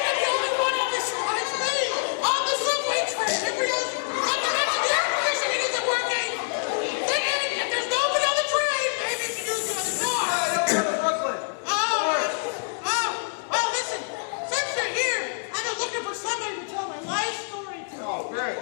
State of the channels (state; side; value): silent; right; digital silence